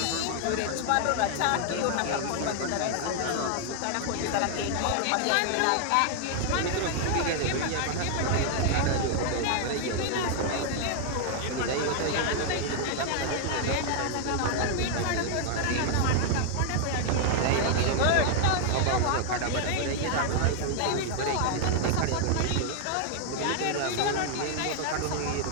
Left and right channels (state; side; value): different; both; correlation 0.00